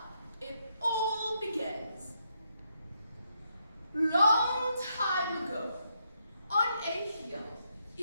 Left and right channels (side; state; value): both; inverted; correlation -0.78